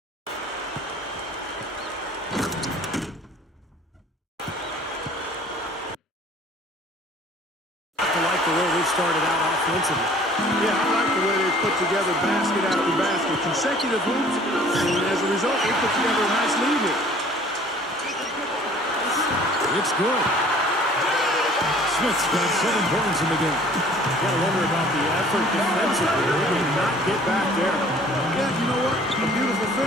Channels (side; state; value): both; normal; correlation 0.52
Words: Started out offensively. Yeah, I like the way they put together basket after basket, consecutive hoops, and as a result, they put together a nice lead here. It's good. Smith's got 7 points in the game. Got to wonder about the effort defensively. They did not get back there. Yeah, you know what? A beautiful